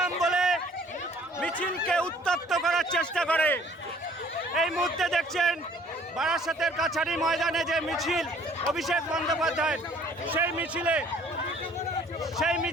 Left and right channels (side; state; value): both; normal; correlation 0.56